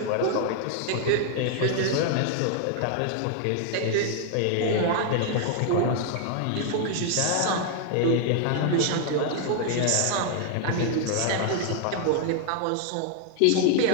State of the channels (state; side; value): different; both; correlation 0.00